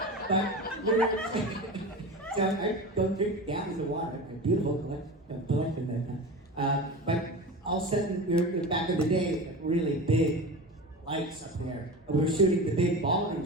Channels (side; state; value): both; normal; correlation 0.30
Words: So I don't drink gallons of water. A beautiful collection that time. But all of a sudden, back in the day, like really big lights up there. We were shooting the big ballroom